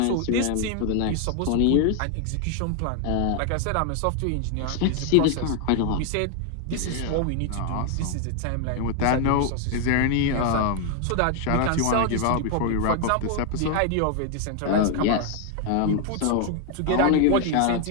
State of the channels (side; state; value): both; different; correlation 0.00